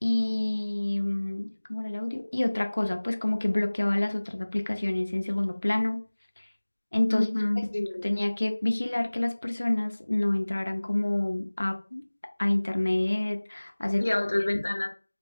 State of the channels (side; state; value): both; inverted; correlation -1.00